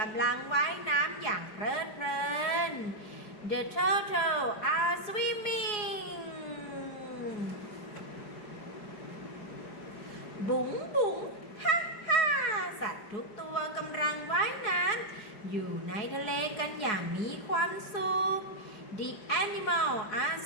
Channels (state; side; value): late; right; 4.8 ms